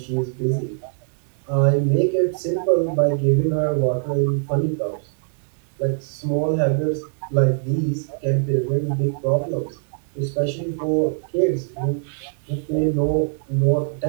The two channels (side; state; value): left; silent; digital silence